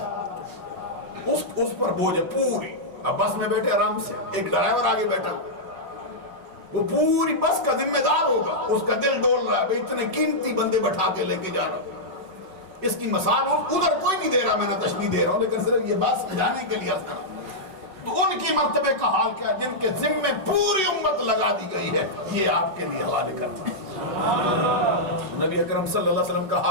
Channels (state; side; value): late; left; 5.2 ms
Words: اس پر بوجھ ہے پوری۔ اب بس میں بیٹھے آرام سے، ایک ڈرائیور آگے بیٹھا ہوا، وہ پوری بس کا ذمہ دار ہوگا، اس کا دل ڈول رہا ہے بھئی اتنے قیمتی بندے بٹھا کے لے کے جا رہا ہوں۔ اس کی مثال ادھر کوئی نہیں دے رہا، میں نہ تشبیہ دے رہا ہوں، لیکن صرف یہ بات سمجھانے کے لیے عرض کر رہا ہوں۔ تو ان کی مرتبے کا حال کیا، جن کے ذمے پوری امت لگا دی گئی ہے، یہ آپ کے لیے حوالے کرتا ہوں۔ نبی اکرم صلی اللہ علیہ وسلم کا